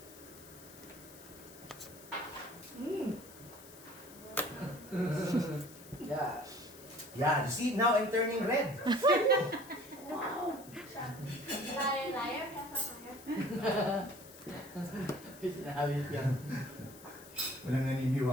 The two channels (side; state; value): left; noise; hiss, 19 dB below the sound